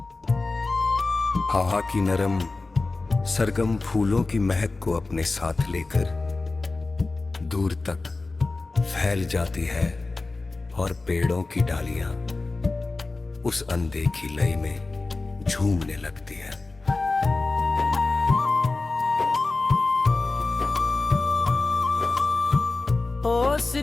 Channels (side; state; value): right; quieter; 3.4 dB